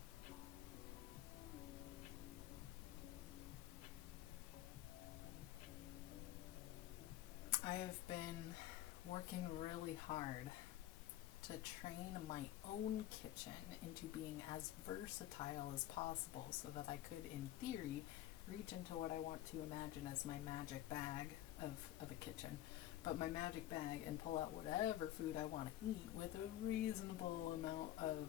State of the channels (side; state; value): right; quieter; 13.7 dB